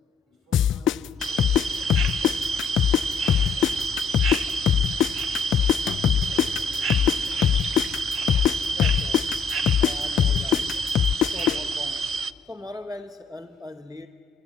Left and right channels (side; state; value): right; quieter; 4.8 dB